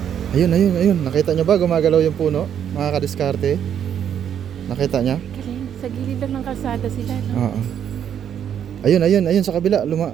Ayun, ayun, ayun. Nakita nyo ba gumagalaw yung puno? Mga kadiskarte. Nakita nyo? Galing. Sa gilid lang ng kalsada sila, no? Oo. Ayun, ayun, ayun sa kabila.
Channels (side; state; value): left; quieter; 9.1 dB